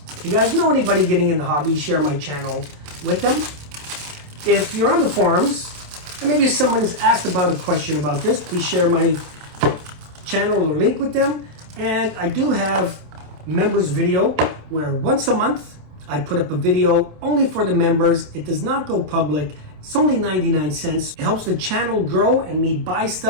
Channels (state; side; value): late; left; 27 ms